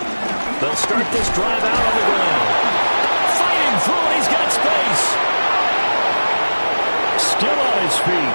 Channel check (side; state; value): both; inverted; correlation -1.00